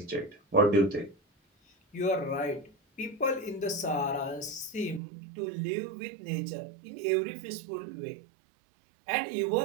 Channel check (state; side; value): drops out; left; at 5.0 s